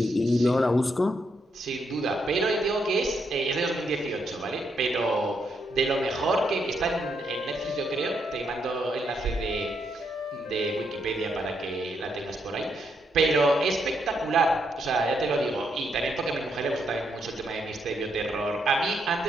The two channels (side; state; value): both; normal; correlation 0.78